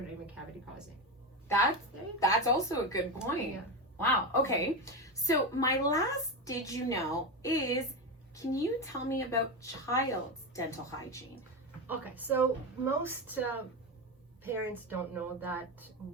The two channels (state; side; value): normal; both; correlation 0.15